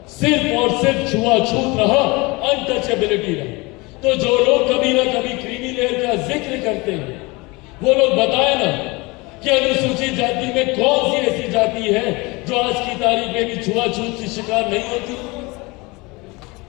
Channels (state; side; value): quieter; right; 25.0 dB